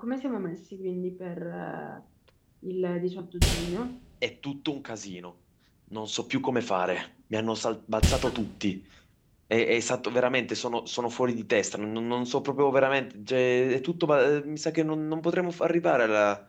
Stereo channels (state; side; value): identical; both; correlation 1.00